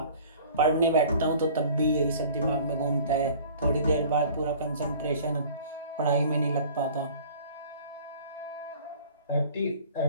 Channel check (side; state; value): both; inverted; correlation -0.47